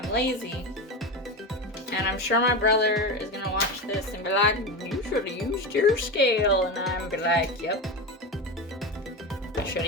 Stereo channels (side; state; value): both; normal; correlation 0.20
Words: lazy. And I'm sure my brother is gonna watch this and be like, you should have used your scale. And I'm be like, yep, I should